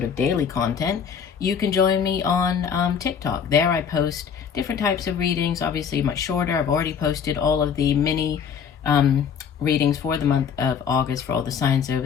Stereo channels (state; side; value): quieter; right; 7.1 dB